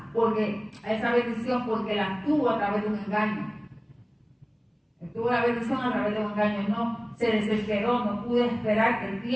a esa bendición, porque la tuvo a través de un engaño. Tuvo la bendición a través de un engaño, no se desesperó, no pudo esperar el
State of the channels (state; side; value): identical; both; correlation 1.00